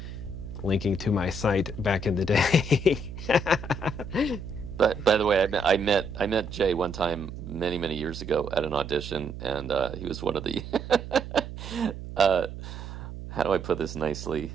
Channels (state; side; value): noise; right; hum, 10 dB below the sound